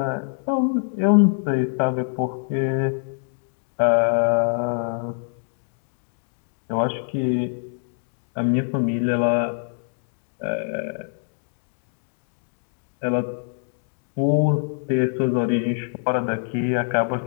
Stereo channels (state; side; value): silent; right; 62 dB below the other